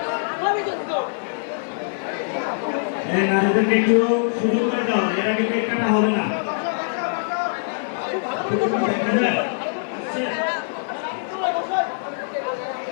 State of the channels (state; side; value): silent; right; digital silence